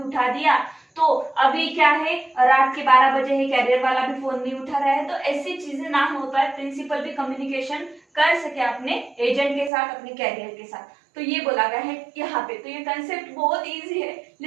दिया तो अभी क्या है, रात के 12 बजे है, कैरियर वाला भी फोन नहीं उठा रहा है, तो ऐसी चीजें ना हो पाए, प्रिंसिपल भी कम्युनिकेशन कर सके अपने एजेंट के साथ, अपने कैरियर के साथ। तो ये बोला गया है यहाँ पे। तो ये कंसेप्ट बहुत इजी है,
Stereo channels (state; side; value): drops out; left; at 9.7 s